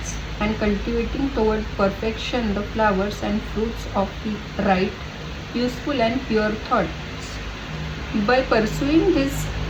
and cultivating toward perfection the flowers and fruits of the right, useful and pure thoughts. By pursuing this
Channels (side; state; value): both; identical; correlation 1.00